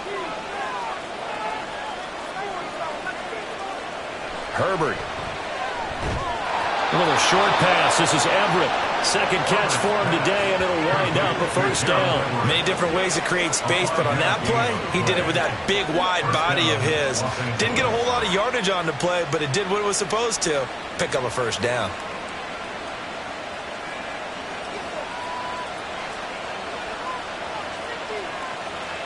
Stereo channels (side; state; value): both; identical; correlation 1.00